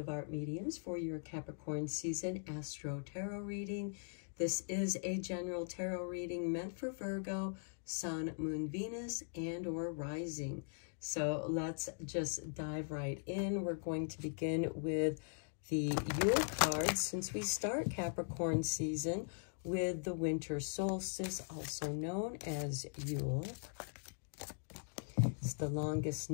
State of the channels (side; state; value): right; silent; digital silence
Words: Art Mediums for your Capricorn season Astro-Tarot reading. This is a general tarot reading meant for Virgo, Sun, Moon, Venus, and or Rising. So let's just dive right in. We're going to begin with the Yule cards since we start Capricorn season with the winter solstice, also known as Yule. It's the longest